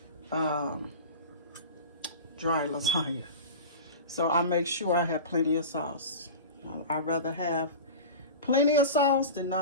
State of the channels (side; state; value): both; inverted; correlation -0.31